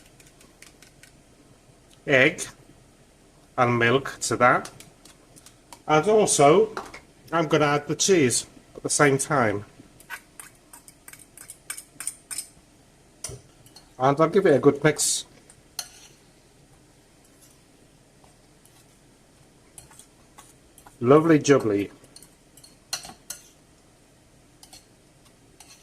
egg and milk to that, and also I'm going to add the cheese at the same time, and I'll give it a good mix. Lovely jubbly.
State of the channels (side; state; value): both; identical; correlation 1.00